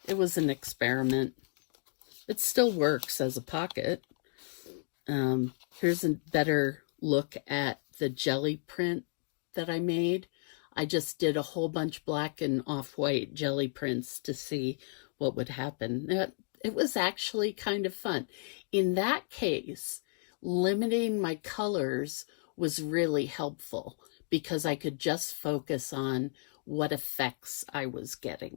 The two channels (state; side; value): silent; right; 56 dB below the other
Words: It was an experiment. It still works as a pocket. Here's a better look at the jelly print that I made. I just did a whole bunch black and off-white jelly prints to see what would happen. It was actually kind of fun. In that case, limiting my colors was really helpful because I could just focus on what effects I was